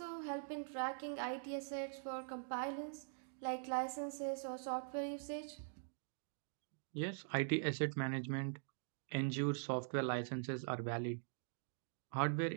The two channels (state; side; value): silent; left; digital silence